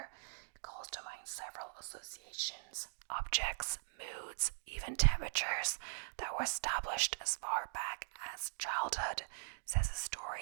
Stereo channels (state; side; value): silent; left; digital silence